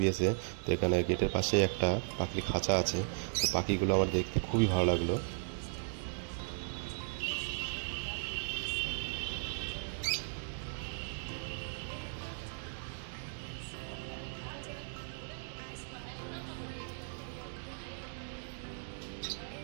তো এখানে গেটের পাশে একটা পাখির খাঁচা আছে। তো পাখিগুলো আমার দেখতে খুবই ভালো লাগলো।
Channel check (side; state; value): left; silent; digital silence